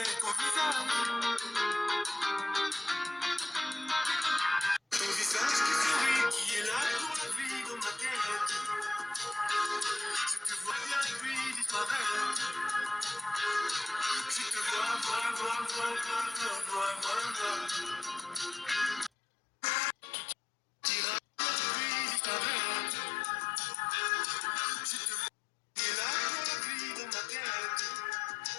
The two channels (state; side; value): drops out; right; at 19.1 s